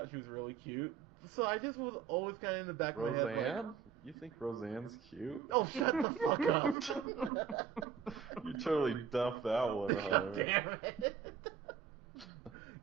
she was really cute. So I just was always kind of in the back of my head. Roseanne? You think Roseanne's cute? Oh, shut the fuck up. You totally duffed that one, Hunter. God damn it.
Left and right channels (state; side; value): quieter; left; 7.3 dB